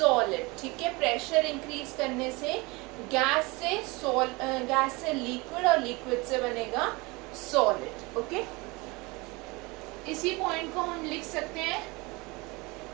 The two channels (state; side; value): quieter; left; 25.0 dB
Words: ठीक है, प्रेशर इंक्रीज करने से गैस से लिक्विड और liquid से बनेगा solid. Okay, इसी point को हम लिख सकते हैं